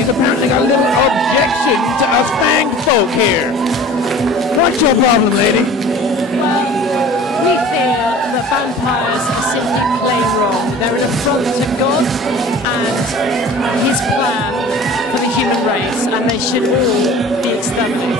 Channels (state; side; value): normal; both; correlation 0.43